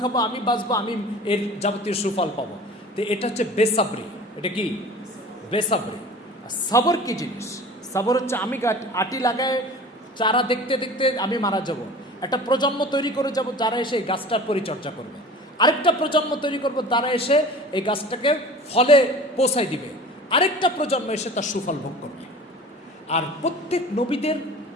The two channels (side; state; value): both; normal; correlation 0.40